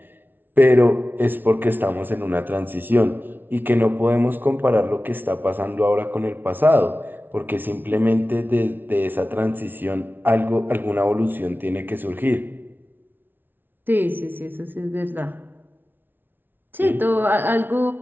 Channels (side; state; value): left; late; 0.096 ms